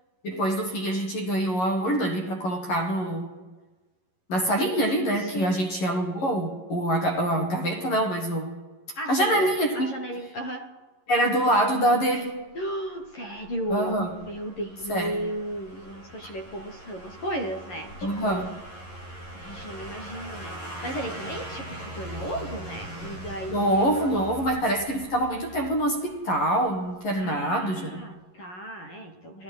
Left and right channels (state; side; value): late; right; 11 ms